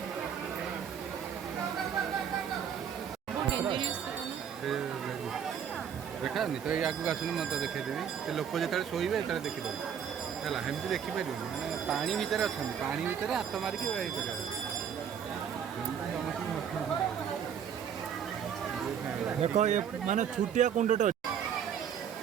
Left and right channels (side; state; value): left; quieter; 8.2 dB